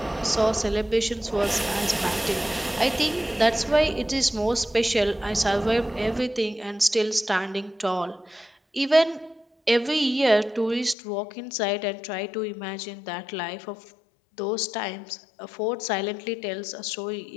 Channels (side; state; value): right; drops out; at 11.0 s